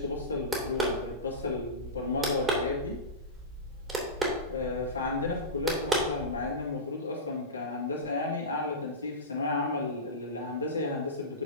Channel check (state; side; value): normal; both; correlation -0.18